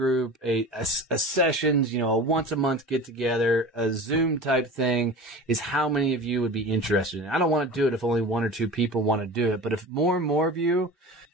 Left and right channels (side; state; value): both; normal; correlation 0.35